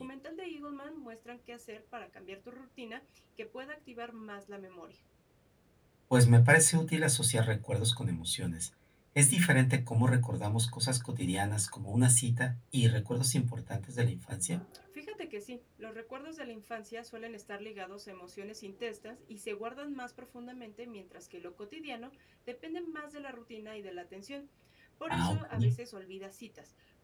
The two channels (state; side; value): identical; both; correlation 1.00